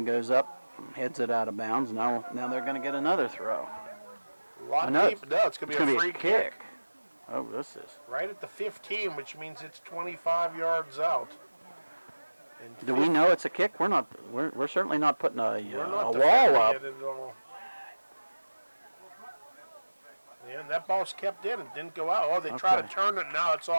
up, heads it out of bounds. Now they're going to get another throw. No, it's going to be a free kick. Oh, this is. Right at the 15, which means it's 25 yards out. And Do we know it's a kick? We're not. We're certainly not putting a not wall defending up. it at all. Yeah, and that ball's kept in. It didn't go out. Oh, they tried Okay. to turn it. Now it's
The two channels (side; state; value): both; inverted; correlation -1.00